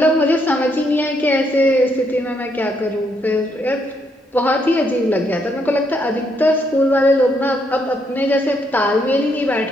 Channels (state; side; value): normal; both; correlation 0.75